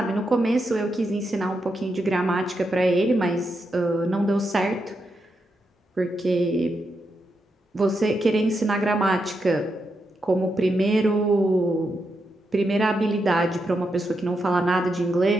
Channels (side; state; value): both; normal; correlation 0.84